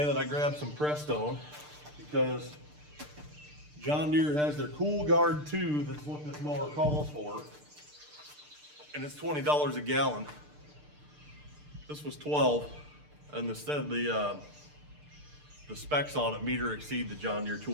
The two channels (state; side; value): late; left; 6.7 ms